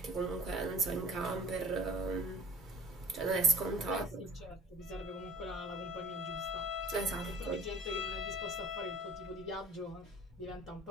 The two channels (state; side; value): normal; both; correlation 0.45